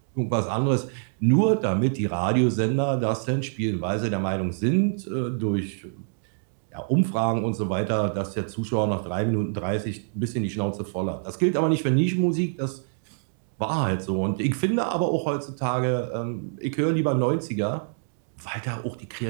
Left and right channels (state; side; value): silent; left; digital silence